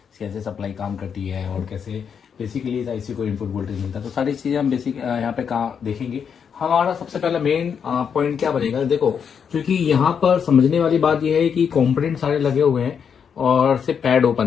कैसे सप्लाई काम करती है और कैसे बेसिकली इस आईसी को इनपुट वोल्टेज मिलता है। तो सारी चीजें हम बेसिक यहाँ पे देखेंगे। हमारा सबसे पहला मेन पॉइंट क्या बनेगा, देखो क्योंकि यहाँ पर समझने वाली बात यह है कि कंपोनेंट सारे लगे हुए हैं और सिर्फ पैड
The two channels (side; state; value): right; quieter; 7.1 dB